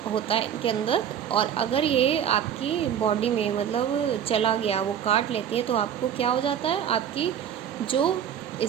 होता है इनके अंदर, और अगर ये आपकी बॉडी में मतलब चला गया, वो काट लेती है, तो आपको क्या हो जाता है, आपकी जो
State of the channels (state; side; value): quieter; left; 9.2 dB